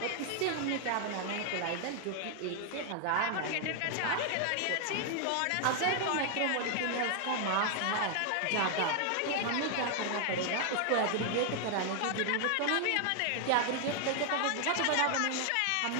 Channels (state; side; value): different; both; correlation 0.00